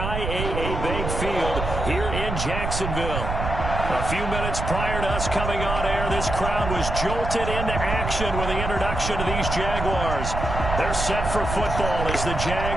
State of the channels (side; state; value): right; noise; rumble, 4 dB below the sound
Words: Bank Field here in Jacksonville. A few minutes prior to us coming on air, this crowd was jolted into action with the introduction of these Jaguars. They're set for football as the